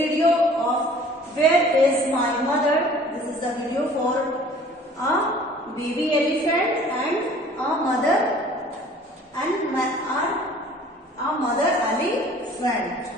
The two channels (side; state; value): both; normal; correlation 0.50